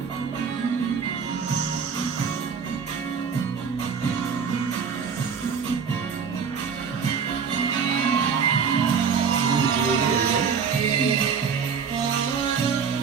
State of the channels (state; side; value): quieter; left; 6.3 dB